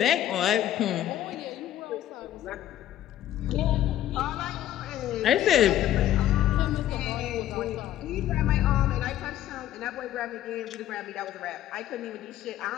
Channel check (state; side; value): quieter; right; 12.4 dB